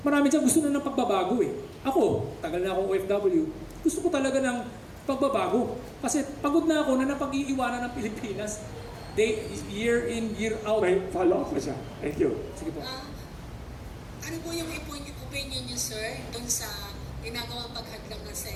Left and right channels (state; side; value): identical; both; correlation 1.00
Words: dyan gusto na ng pagbabago eh. Ako, tagal na akong OFW. Gusto ko talaga ng pagbabago. Kasi pagod na ako na napag-iiwanan ng Pilipinas. Year in, year out. May follow-up pa siya. Thank you. Sige po. Ano po yung opinion niyo, sir, doon sa ginagawang paghadlang ng